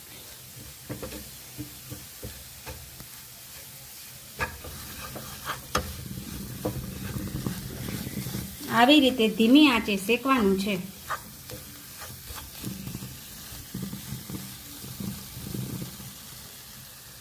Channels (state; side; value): identical; both; correlation 1.00